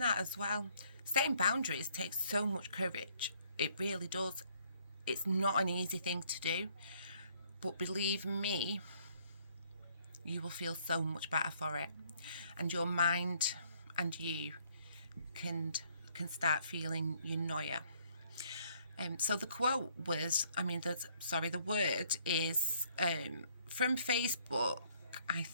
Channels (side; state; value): both; inverted; correlation -0.64